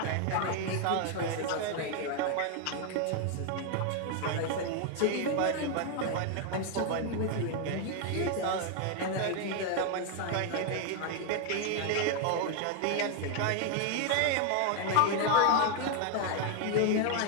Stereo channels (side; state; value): both; different; correlation 0.01